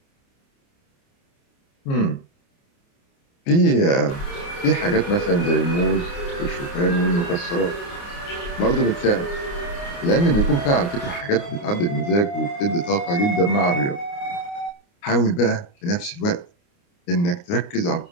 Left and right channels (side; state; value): right; late; 29 ms